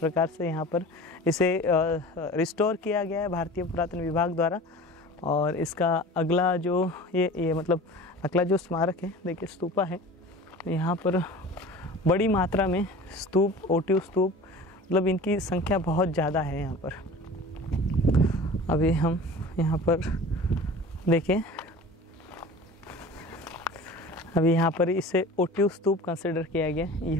से यहाँ पर इसे रिस्टोर किया गया है भारतीय पुरातन विभाग द्वारा। और इसका अगला जो ये मतलब अगला जो स्मारक है देखिए स्तूपा है, यहाँ पर बड़ी मात्रा में स्तूप, ओटिव स्तूप, मतलब इनकी संख्या बहुत ज़्यादा है यहाँ पर। अभी हम यहाँ पर देखें, अभी यहाँ पर इसे ओटिव स्तूप कंसिडर किया गया।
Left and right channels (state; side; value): normal; both; correlation 0.39